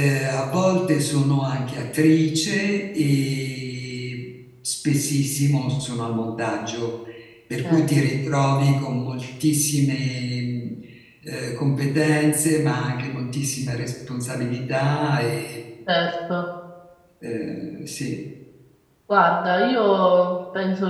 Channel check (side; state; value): both; identical; correlation 1.00